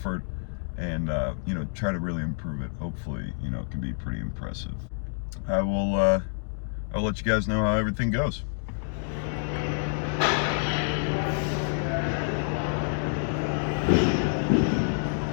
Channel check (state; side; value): silent; right; digital silence